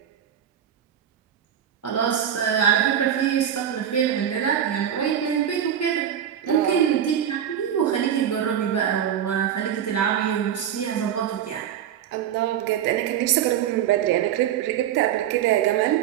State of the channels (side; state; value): left; quieter; 9.7 dB